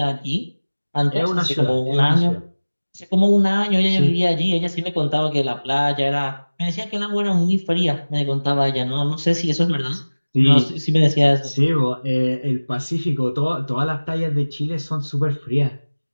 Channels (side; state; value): both; inverted; correlation -1.00